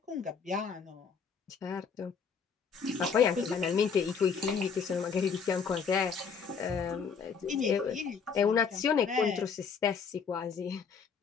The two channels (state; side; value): quieter; right; 6.0 dB